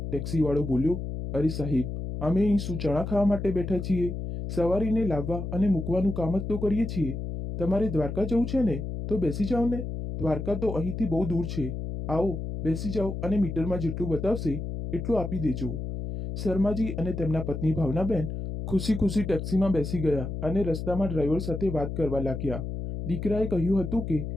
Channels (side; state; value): left; noise; hum, 5 dB below the sound